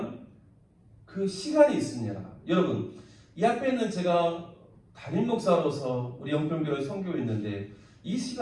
그 시간이 있습니다. 여러분, 이 앞에 있는 제가 담임 목사로서 우리 영평교를 섬기고 있는데 이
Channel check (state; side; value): identical; both; correlation 1.00